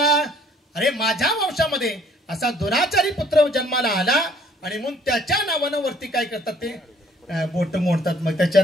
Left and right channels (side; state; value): both; normal; correlation 0.59